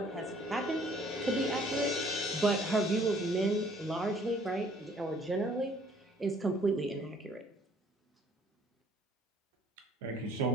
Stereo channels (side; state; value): both; normal; correlation 0.59